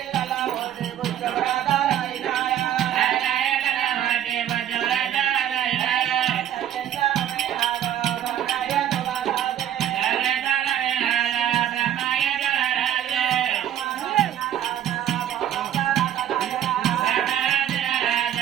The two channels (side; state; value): left; quieter; 10.7 dB